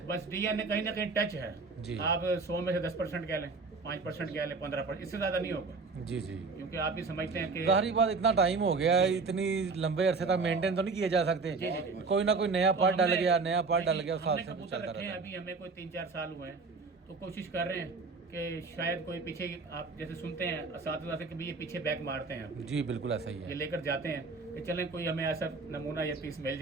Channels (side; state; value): left; quieter; 4.2 dB